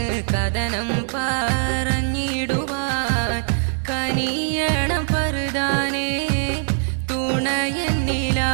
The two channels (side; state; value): left; silent; digital silence